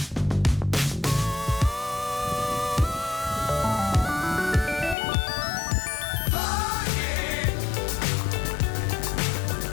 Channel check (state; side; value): drops out; right; at 5.0 s